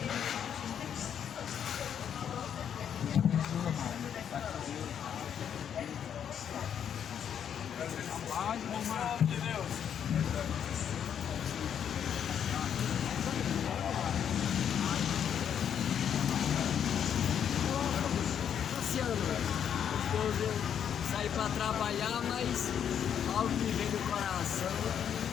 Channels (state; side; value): quieter; right; 8.6 dB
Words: Depois eu saí para trabalhar, mas algo me veio do coração.